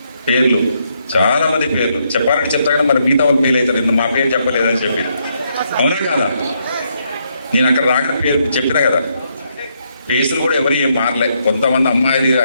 పేర్లు చాలా మంది పేర్లు చెప్పాలని చెప్తా కానీ మరి మిగతా వాళ్ళు ఫెయిల్ అవుతారు, మా పేరు చెప్పలేదని చెప్పి. అవునా కదా? నేను అక్కడ రాక పేరు చెప్పినా కదా. ఫేసులు కూడా ఎవరు ఏం మారలే. కొంతమంది అమ్మాయిలు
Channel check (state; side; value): inverted; both; correlation -0.76